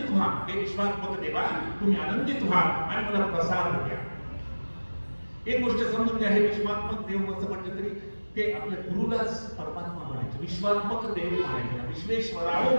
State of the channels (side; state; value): both; inverted; correlation -1.00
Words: व्हा, हे विश्वात्मक देवा, तुम्ही आनंदित व्हा आणि मला प्रसाद द्या. एक गोष्ट समजून घ्या, हे विश्वात्मक देव असं म्हटलं तरी ते आपल्या गुरुलाच परमात्मा म्हणायचे, विश्वात्मक देव म्हणायचे. विश्वेश्वराव